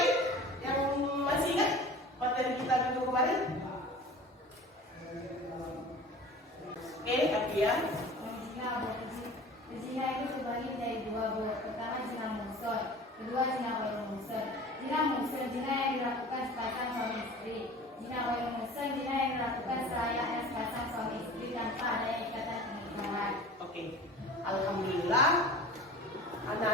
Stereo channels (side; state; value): both; normal; correlation 0.40